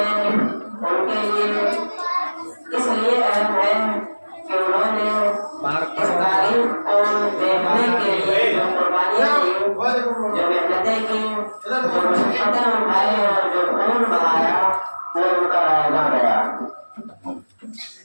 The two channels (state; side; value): inverted; both; correlation -1.00